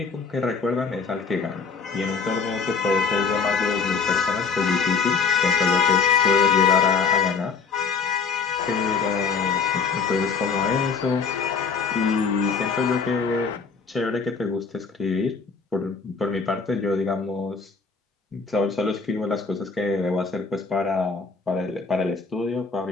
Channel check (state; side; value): quieter; right; 5.2 dB